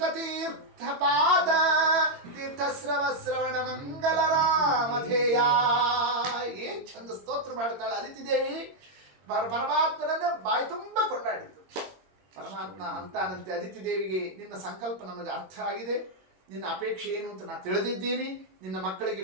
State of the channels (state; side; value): late; left; 22 ms